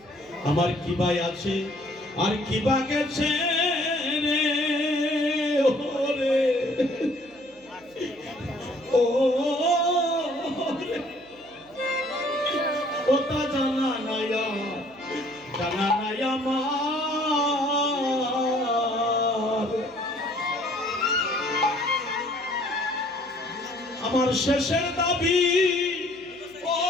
আমার কি ভাই আছে আর কি বা গেছে রে ওরে, ও রে, ওটা জানা নাই আমার। আমার শেষের দাবি ও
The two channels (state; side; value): noise; right; hum, 29 dB below the sound